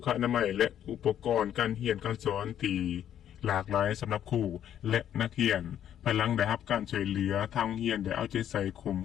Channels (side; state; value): right; quieter; 10.3 dB